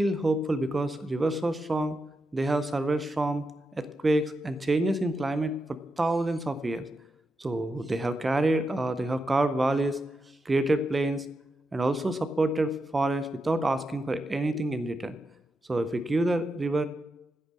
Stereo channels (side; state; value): both; normal; correlation 0.86